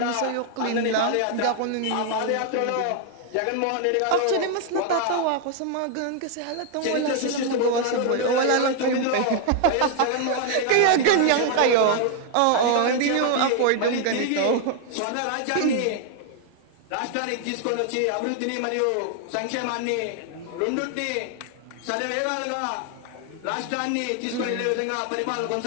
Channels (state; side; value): different; both; correlation 0.00